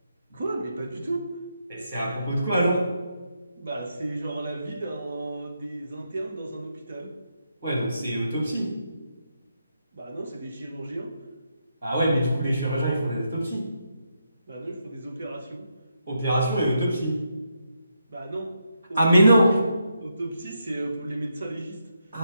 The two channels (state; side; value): inverted; both; correlation -0.82